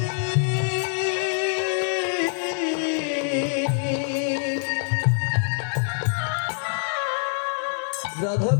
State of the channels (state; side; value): silent; right; 58 dB below the other